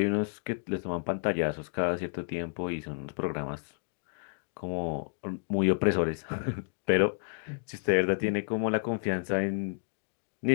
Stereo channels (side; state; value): right; silent; digital silence